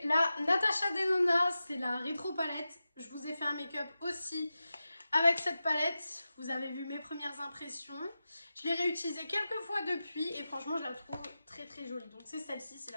la Natasha Denona, c'est la rétro palette. Je vous ai fait un make-up aussi avec cette palette. Vous avez vu mes premières impressions. Je l'ai réutilisée quelques fois depuis et franchement je la trouve très très jolie. Donc c'est celle-ci, c'est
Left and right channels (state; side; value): inverted; both; correlation -0.93